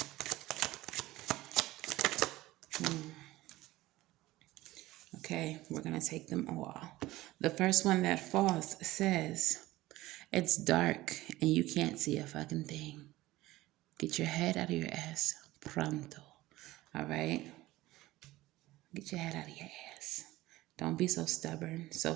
Okay, we're gonna take them all. The first one that falls says, it's dark and you can't see a fucking thing. Get your head out of your ass pronto. All right? Get your head out of your ass. Don't be so stubborn, so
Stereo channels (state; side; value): quieter; left; 17.6 dB